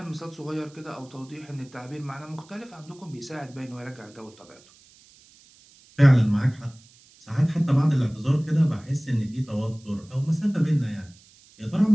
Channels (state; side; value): noise; right; hiss, 26 dB below the sound